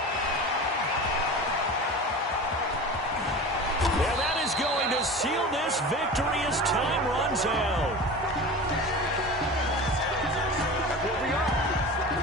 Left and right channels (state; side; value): normal; both; correlation 0.33